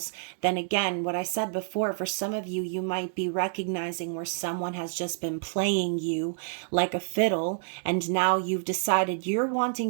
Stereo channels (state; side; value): silent; left; digital silence